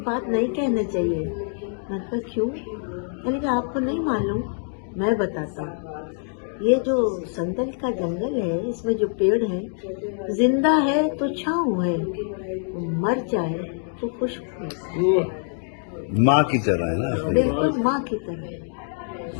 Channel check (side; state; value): right; silent; 56 dB below the other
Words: بات نہیں کہنا چاہیے. میں نے کہا کیوں؟ میں نے کہا آپ کو نہیں معلوم، میں بتاتا ہوں. یہ جو سندل کا جنگل ہے اس میں جو پیڑ ہیں، زندہ ہے تو چھاؤں ہے، مر جائے تو خوشبو ہے. ماں کی طرح ہے نا. بالکل ماں کی طرح.